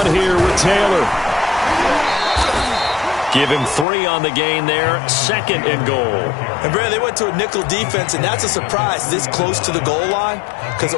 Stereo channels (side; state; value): right; drops out; at 3.9 s